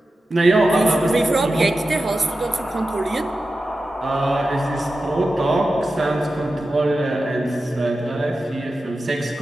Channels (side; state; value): both; normal; correlation 0.92